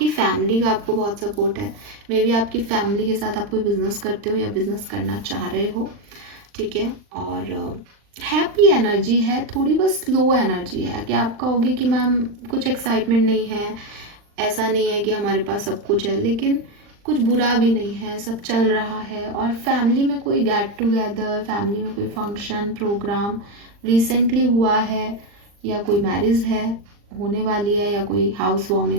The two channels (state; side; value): late; left; 39 ms